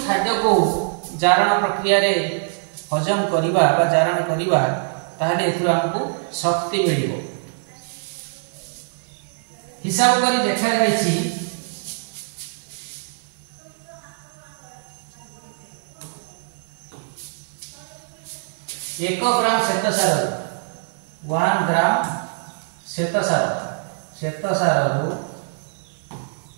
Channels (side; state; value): left; silent; 63 dB below the other